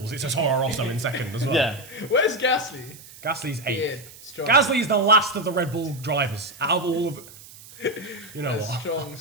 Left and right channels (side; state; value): right; noise; hiss, 19 dB below the sound